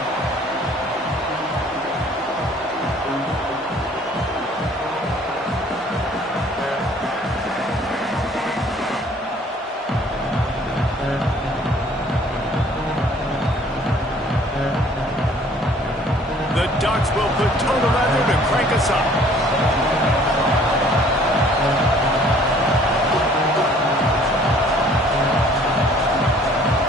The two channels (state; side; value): normal; both; correlation 0.56